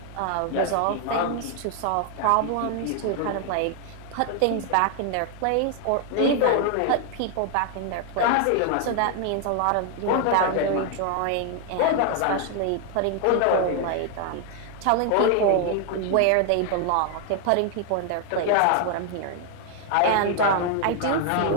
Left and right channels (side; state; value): both; different; correlation 0.00